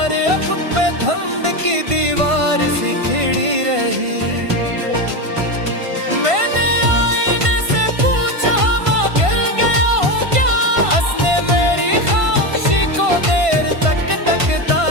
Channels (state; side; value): late; left; 1.5 ms